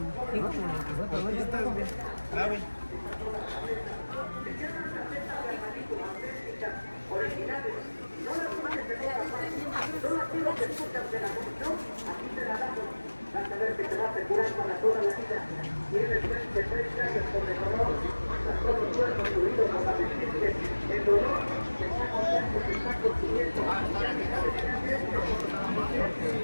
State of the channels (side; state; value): both; inverted; correlation -1.00